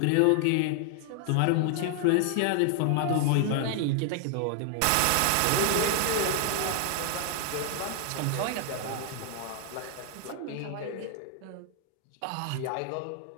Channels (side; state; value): both; different; correlation 0.00